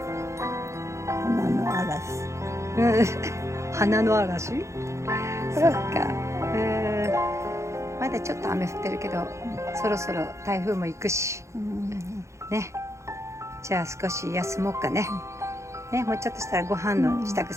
花の嵐。花の嵐。そっか。まだちょっと雨降ってるけど、そろそろ台風も行くし。ね。じゃあ少し休もうかね。ね、もうちょっとしたらご飯の支度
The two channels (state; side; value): late; left; 0.14 ms